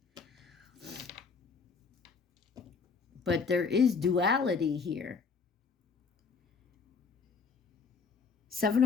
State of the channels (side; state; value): right; quieter; 5.2 dB